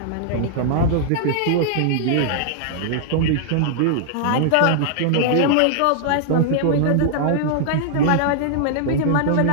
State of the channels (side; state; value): both; different; correlation -0.01